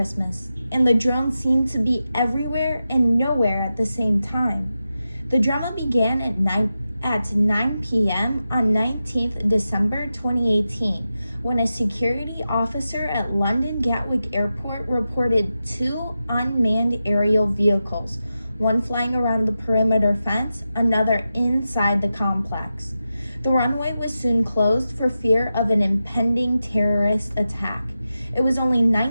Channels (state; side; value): inverted; both; correlation -0.91